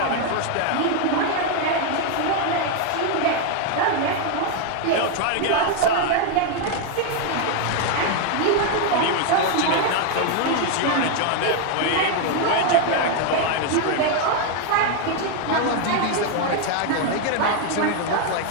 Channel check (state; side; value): different; both; correlation 0.01